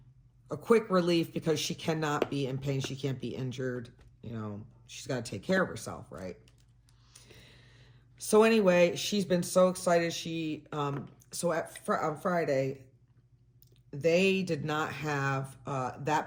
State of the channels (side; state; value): both; identical; correlation 1.00